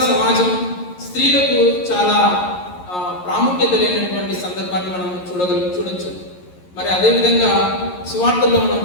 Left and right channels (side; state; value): right; late; 11 ms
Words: సమాజం స్త్రీలకు చాలా ప్రాముఖ్యత లేనటువంటి సందర్భాన్ని మనం చూడొచ్చు. మరి అదేవిధంగా సువార్తల్లో మనం